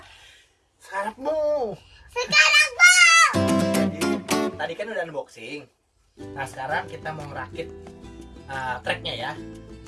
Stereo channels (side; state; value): both; identical; correlation 1.00